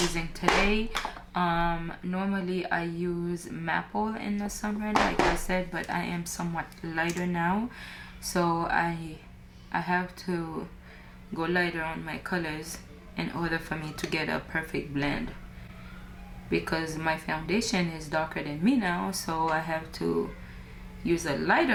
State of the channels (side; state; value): both; identical; correlation 1.00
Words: today. Normally I use Maple in the summer, like I said, but I am somewhat lighter now, so I have to go lighter on my colors in order for me to get a perfect blend, because my foundation is darker than me now, so I have to use a